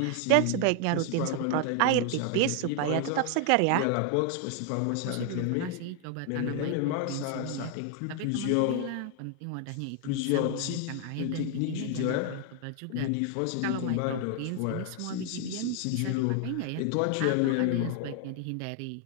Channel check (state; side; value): different; both; correlation 0.00